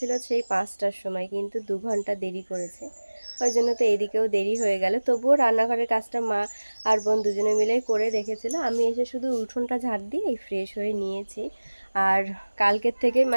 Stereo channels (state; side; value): inverted; both; correlation -1.00